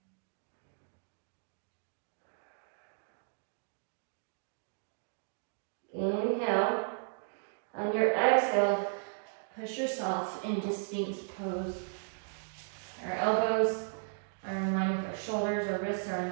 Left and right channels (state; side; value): silent; left; digital silence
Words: Inhale. On your exhale, push yourself into Sphinx pose. Our elbows are in line with our shoulders, our wrists are in